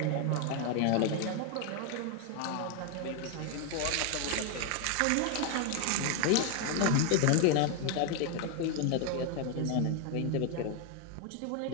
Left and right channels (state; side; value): different; both; correlation 0.01